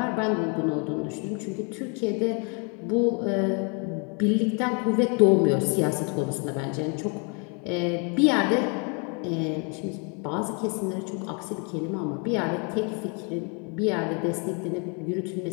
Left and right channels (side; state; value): right; quieter; 35.9 dB